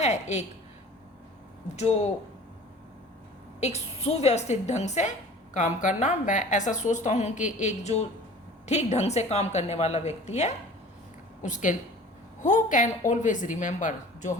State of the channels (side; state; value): both; normal; correlation 0.44